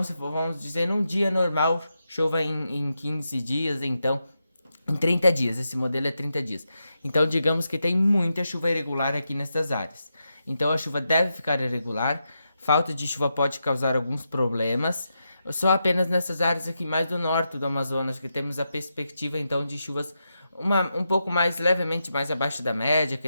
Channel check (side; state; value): both; inverted; correlation -0.86